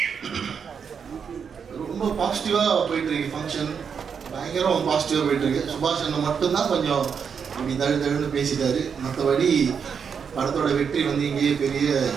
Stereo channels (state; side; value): quieter; left; 6.7 dB